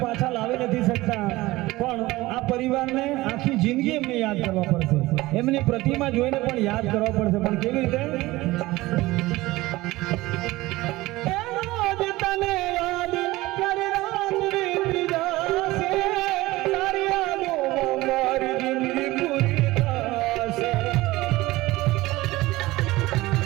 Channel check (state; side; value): quieter; left; 19.1 dB